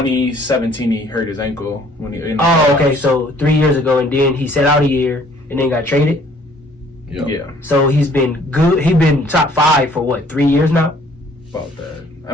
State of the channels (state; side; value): normal; both; correlation 0.59